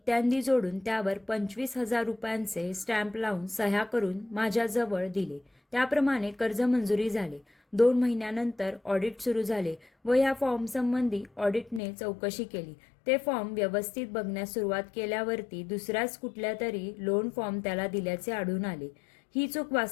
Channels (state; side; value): drops out; right; at 11.8 s